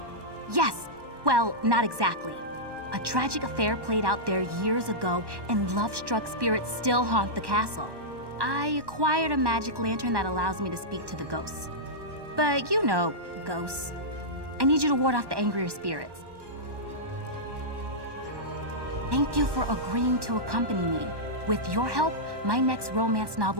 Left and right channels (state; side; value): late; left; 1.1 ms